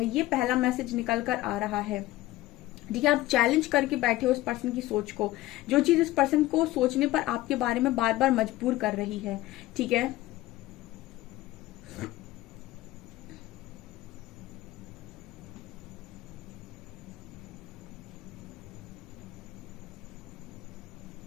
ये पहला मैसेज निकल कर आ रहा है। ठीक है, आप चैलेंज करके बैठे हो उस पर्सन की सोच को, जो चीज इस पर्सन को सोचने पर आपके बारे में बार बार मजबूर कर रही है। ठीक है,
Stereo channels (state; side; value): quieter; right; 16.9 dB